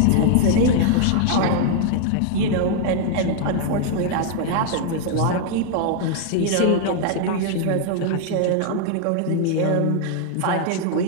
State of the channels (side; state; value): both; different; correlation 0.00